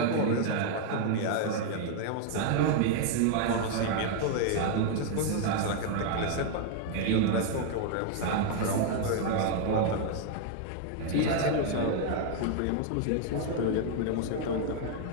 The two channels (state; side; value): different; both; correlation 0.00